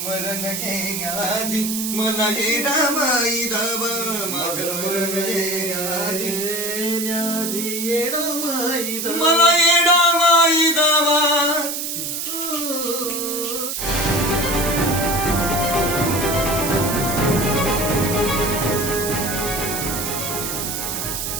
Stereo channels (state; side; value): noise; right; hiss, 3 dB below the sound